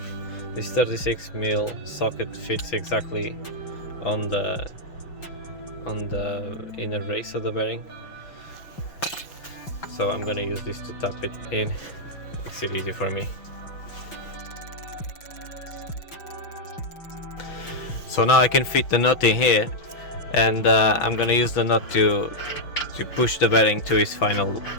36mm socket fits exactly on the inner race of the bearing. So I'm gonna use this to tap it in. Makes it easy for me. So now I can fit the nut in here, and I'm gonna use the nut to push the bearing to its final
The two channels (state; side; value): late; right; 6.1 ms